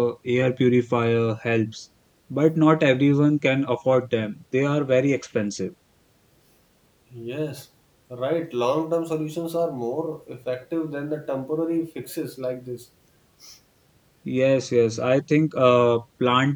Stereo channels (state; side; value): identical; both; correlation 1.00